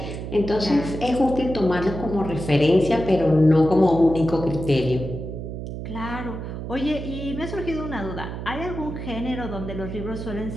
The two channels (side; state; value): right; noise; hum, 7 dB below the sound